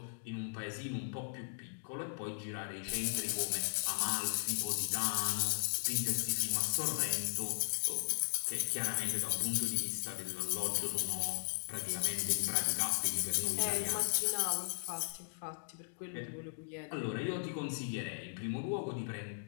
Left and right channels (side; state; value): right; silent; digital silence